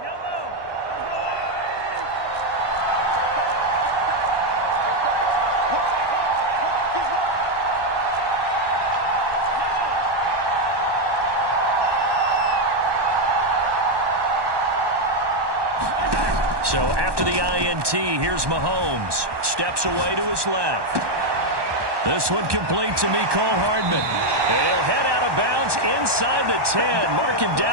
So after the INT, here's Mahomes. Steps away to his left. This one complete to Mecole Hardman. And he'll head out of bounds inside the 10. Mark him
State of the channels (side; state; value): left; late; 1.2 ms